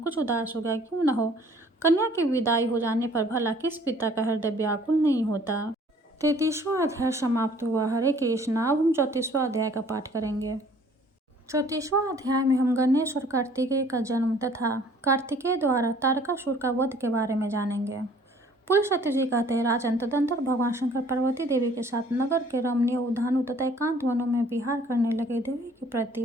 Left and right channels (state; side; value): normal; both; correlation 0.56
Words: उदास हो गया। क्यों न हो, कन्या की विदाई हो जाने पर भला किस पिता का हृदय व्याकुल नहीं होता। 33वां अध्याय समाप्त हुआ। हरे कृष्ण। अब हम 34वां अध्याय का पाठ करेंगे। 34वां अध्याय में हम गणेश और कार्तिकेय का जन्म तथा कार्तिकेय द्वारा तारकासुर का वध के बारे में जानेंगे। पुलस्त्य जी कहते हैं, राजन, तदंतर भगवान शंकर पार्वती देवी के साथ नगर के रमणीय उद्यानों तथा एकांत वनों में विहार करने लगे। देवी के प्रति